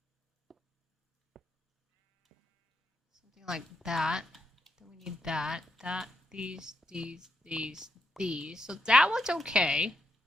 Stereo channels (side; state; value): both; normal; correlation 0.81